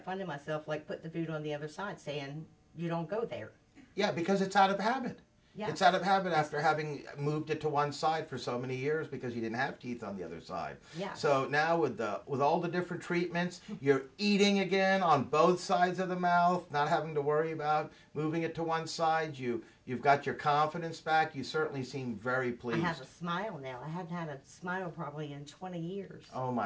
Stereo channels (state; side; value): identical; both; correlation 1.00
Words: finding myself like putting the food on the other side, saying, you don't go there. Yeah, because it's out of habit. Yeah. It's out of habit after having moved it to one side for so many years because you didn't have teeth on the other side. Yeah. So now with all the different treatments, you're eating again on both sides of the mouth, not having to worry about moving it to one side. You've got your confidence back. You certainly seem very pleased. I have a smile now. I hadn't had a smile probably in 20 years. Oh